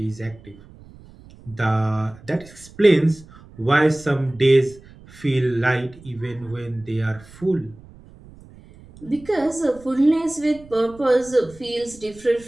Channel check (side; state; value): right; noise; rumble, 22 dB below the sound